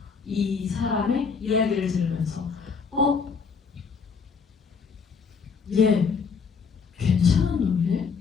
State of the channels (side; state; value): right; quieter; 5.6 dB